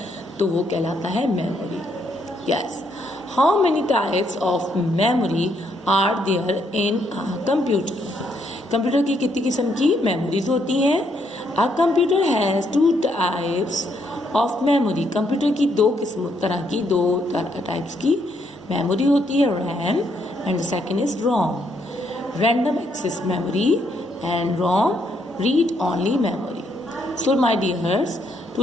तो वो कहलाता है memory. Yes. How many types of memory are there in a computer? Computer की कितनी किस्म की मेमोरीज होती हैं? A computer has 2 types of memory. Computer की दो टाइप्स की मेमोरी होती है. RAM and second is ROM. Random access memory and ROM read only memory. So my dears,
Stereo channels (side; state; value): both; normal; correlation 0.74